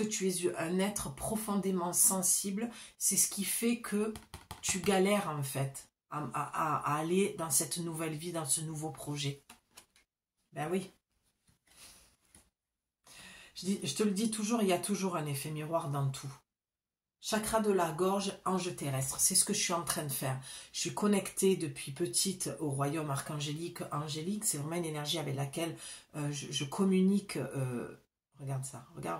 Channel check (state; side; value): identical; both; correlation 1.00